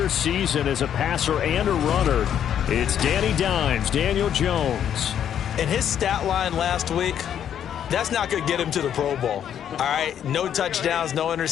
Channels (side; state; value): right; quieter; 9.5 dB